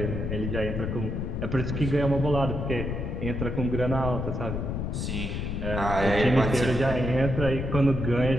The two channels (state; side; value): noise; left; rumble, 3 dB below the sound